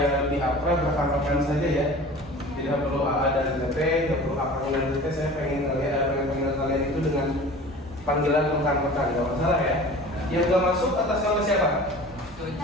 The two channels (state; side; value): normal; both; correlation 0.40